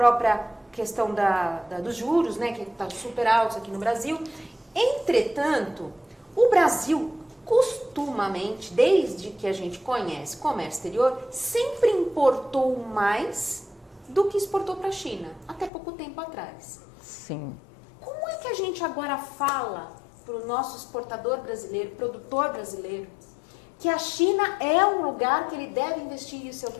questão dos juros, né, que está super altos aqui no Brasil. Entretanto, o Brasil, costumamente, desde que a gente conhece comércio exterior, sempre importou mais do que exportou para a China, até pouco tempo atrás. Sim. Como é que a gente agora fala para o nosso exportador brasileiro, produtor brasileiro, que a China é um lugar que ele deve investir em seu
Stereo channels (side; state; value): right; drops out; at 15.7 s